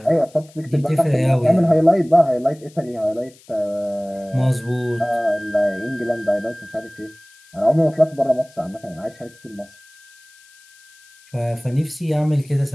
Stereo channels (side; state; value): left; noise; hiss, 27 dB below the sound